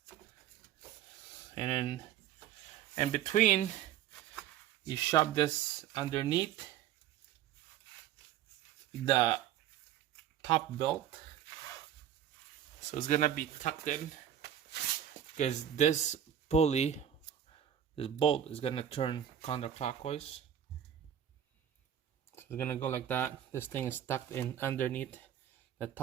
and then in between you shove this underneath the top belt, so it's gonna be tucked in, because this pulley, this bolt is gonna turn counterclockwise. So it's gonna go like that. This thing is tucked in underneath the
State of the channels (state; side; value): quieter; left; 10.2 dB